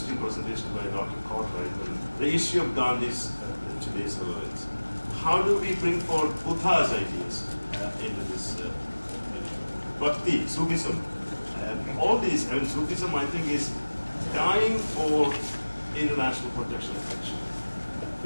presentation by Dr. Cartwright, the issue of Gandhi's today's relevance. How do we bring forth Buddha's ideas into this Bhakti, Sufism? All these, Sufism I think is dying for international protection of action,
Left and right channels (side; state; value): both; inverted; correlation -1.00